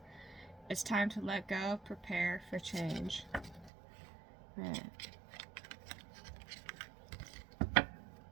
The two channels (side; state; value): left; drops out; at 3.7 s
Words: It's time to let go, prepare for change. Right.